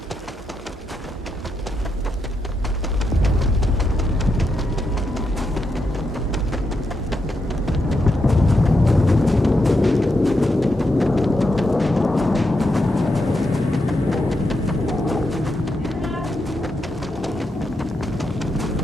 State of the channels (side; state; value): both; normal; correlation 0.83